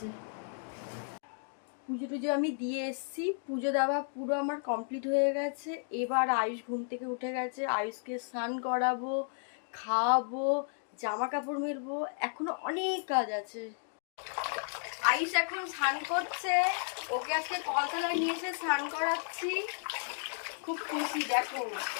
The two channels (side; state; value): right; silent; digital silence